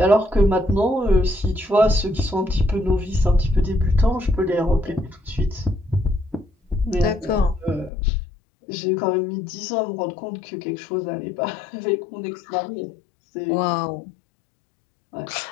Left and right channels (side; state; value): right; drops out; at 7.9 s